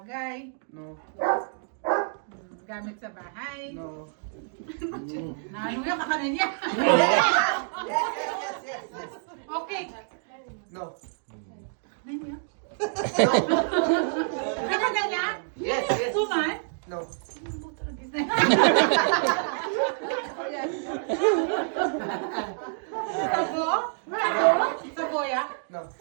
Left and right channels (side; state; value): left; silent; digital silence